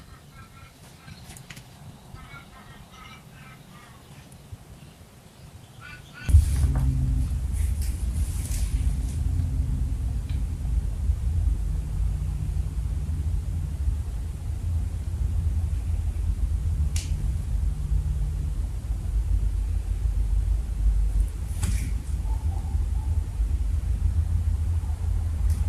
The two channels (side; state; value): both; identical; correlation 1.00